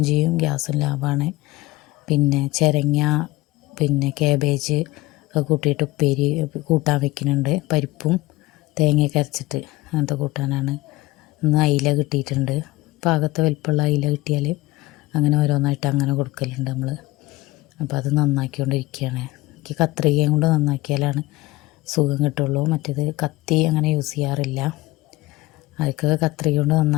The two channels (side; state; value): right; quieter; 19.6 dB